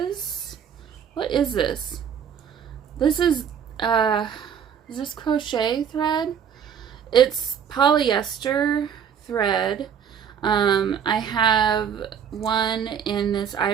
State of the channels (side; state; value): left; quieter; 8.0 dB